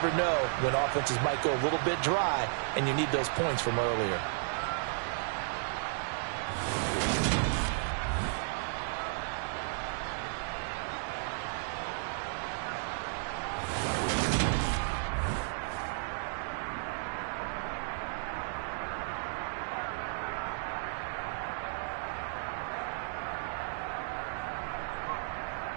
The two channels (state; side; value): silent; left; digital silence